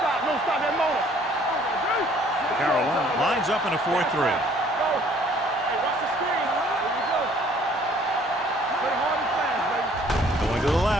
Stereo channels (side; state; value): both; normal; correlation 0.58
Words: Don't stop that motor. Carolina lines up in a 4-3. Go. Hey, watch the screen. There you go. Play hard and fast, baby. Going to the